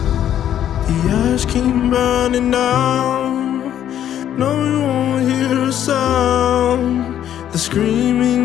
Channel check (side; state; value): right; quieter; 10.6 dB